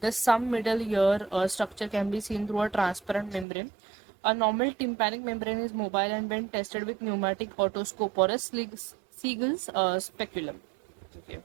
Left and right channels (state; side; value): drops out; left; at 3.5 s